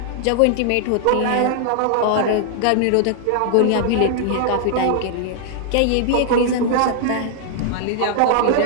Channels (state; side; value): different; both; correlation 0.00